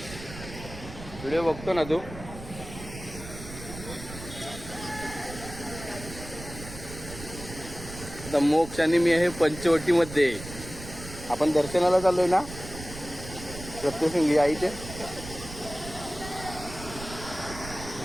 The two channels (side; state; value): right; noise; rumble, 12 dB below the sound